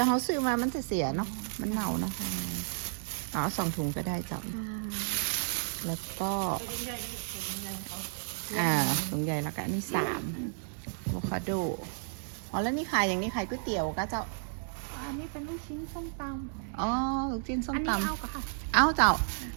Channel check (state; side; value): silent; left; digital silence